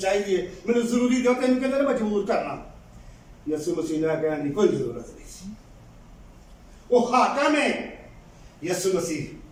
چاہیے، مجھے ضروری ہوتے ہیں ان کے لیے مجبور کرنا۔ یسوع مسیح نے کہا نہیں، کوئی ضرورت نہیں، وہ حاکم ہے۔ یسوع مسیح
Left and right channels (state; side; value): identical; both; correlation 1.00